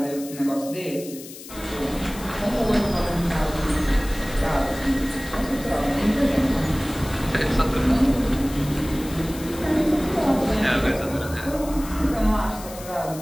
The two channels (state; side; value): noise; left; hiss, 15 dB below the sound